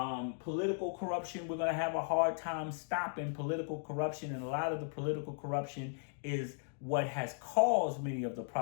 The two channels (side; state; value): right; silent; digital silence